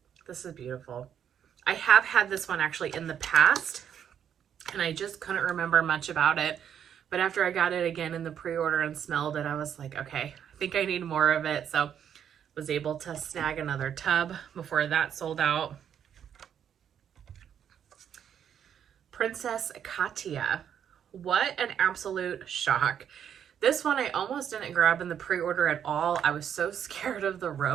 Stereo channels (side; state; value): left; quieter; 8.9 dB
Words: This is beautiful. I have had this one actually in the past, and I just couldn't remember much about it. But after I got it again in the pre-order and smelled it, I was like, okay, I think I need more of it. So was able to snag another tub before that sold out. Princess Katia. What an absolute shock. This one I almost didn't grab in the pre-order at all. I was so scared of the